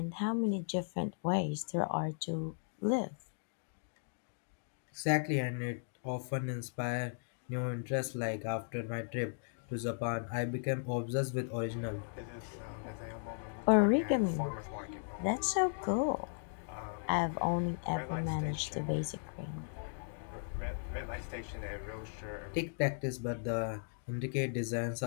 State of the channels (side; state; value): right; silent; digital silence